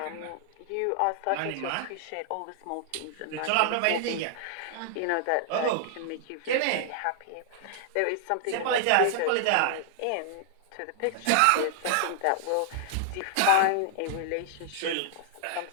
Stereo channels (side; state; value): both; different; correlation -0.01